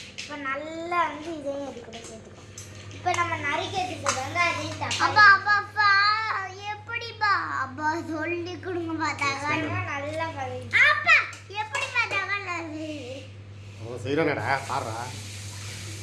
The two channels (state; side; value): identical; both; correlation 1.00